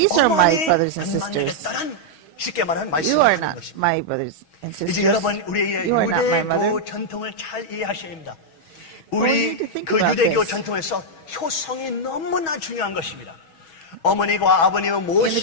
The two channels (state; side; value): late; right; 6.2 ms